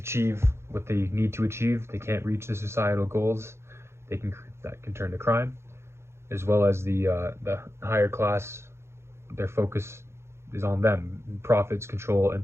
what they need to achieve. They can't reach the societal goals. That can turn to crime, as well as the higher class. Their focus is on them, profits, control,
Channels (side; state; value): left; late; 0.13 ms